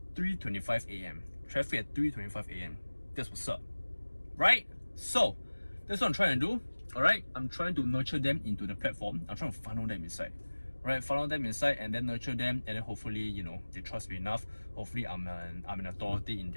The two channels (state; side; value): inverted; both; correlation -1.00